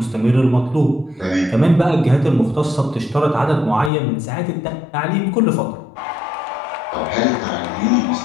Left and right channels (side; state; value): right; drops out; at 3.9 s